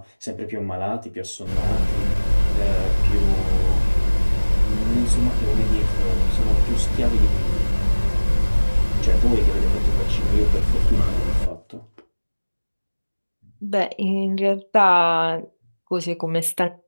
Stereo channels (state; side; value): inverted; both; correlation -1.00